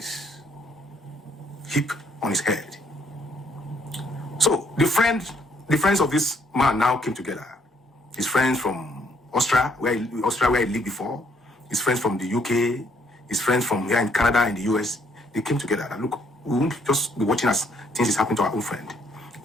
heaped on his head. So the friends of this man now came together. His friends from Austria, where he lived before, his friends from the UK, his friends from here in Canada and the US, they came together. And look, we won't just be watching as things is happening to our own friend.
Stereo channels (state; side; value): normal; both; correlation 0.68